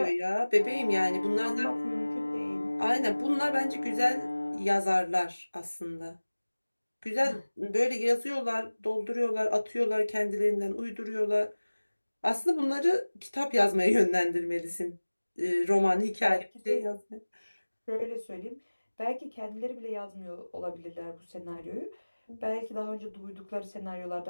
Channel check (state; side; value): inverted; both; correlation -1.00